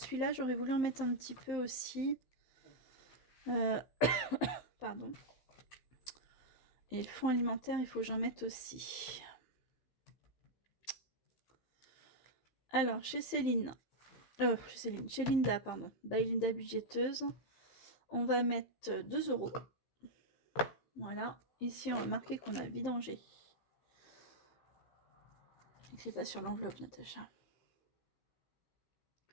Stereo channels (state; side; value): late; right; 15 ms